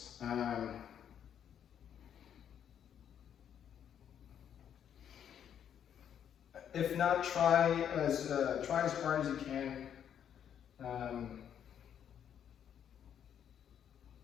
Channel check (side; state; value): right; quieter; 9.1 dB